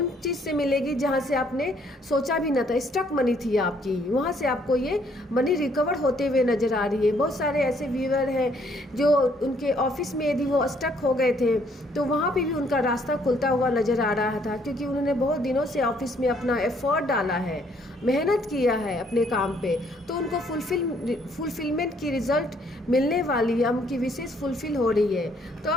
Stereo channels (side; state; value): both; normal; correlation 0.66